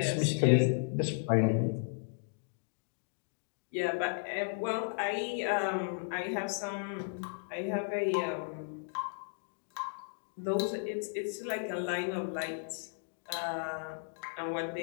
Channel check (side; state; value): right; silent; digital silence